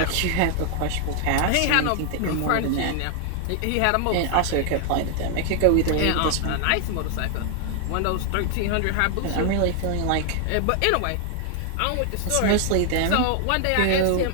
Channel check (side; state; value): both; different; correlation 0.00